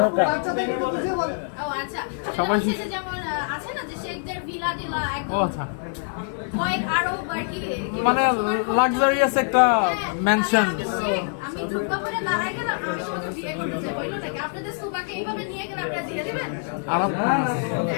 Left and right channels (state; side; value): silent; right; 62 dB below the other